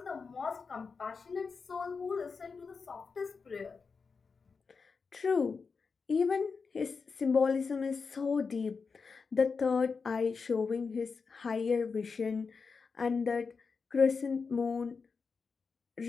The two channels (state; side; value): quieter; right; 5.0 dB